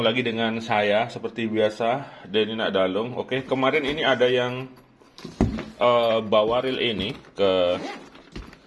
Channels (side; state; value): both; identical; correlation 1.00